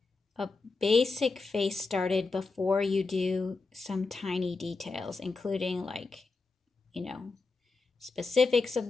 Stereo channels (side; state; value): right; quieter; 3.9 dB